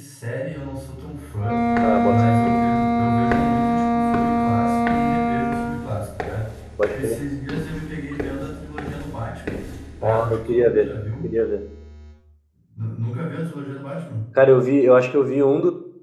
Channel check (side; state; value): both; identical; correlation 1.00